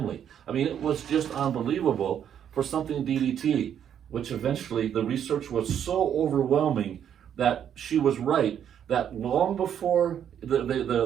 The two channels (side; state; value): left; quieter; 9.2 dB